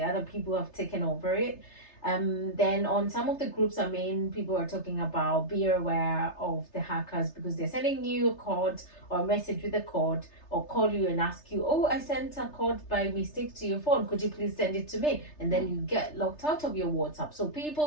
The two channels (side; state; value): right; late; 3.3 ms